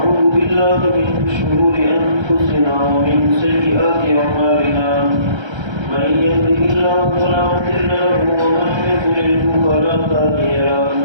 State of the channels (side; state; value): left; late; 1.3 ms